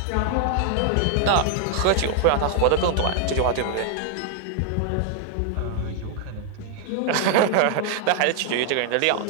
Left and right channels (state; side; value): different; both; correlation 0.00